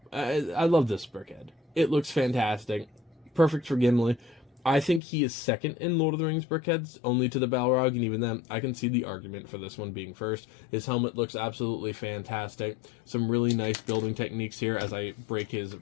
I love this Brickhead. It looks fantastic. Perfect for Gimli. I think he is second in Lord of the Rings Brickheads, only to the Balrog, and even then, I can see the argument for this one being first. His helmet looks absolutely fantastic. Some really nice building techniques here as I break his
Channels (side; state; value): right; drops out; at 5.0 s